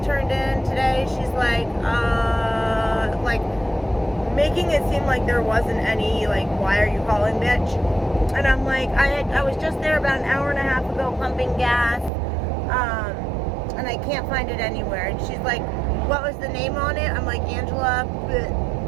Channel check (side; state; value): left; drops out; at 12.1 s